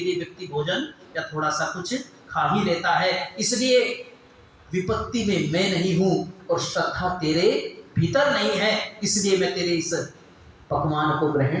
व्यक्ति भोजन या थोड़ा सा कुछ खा ही लेता है। इसलिए विपत्ति में मैं नहीं हूं और श्रद्धा तेरे भीतर नहीं है, इसलिए मैं तेरे इस पकवान को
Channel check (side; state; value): both; identical; correlation 1.00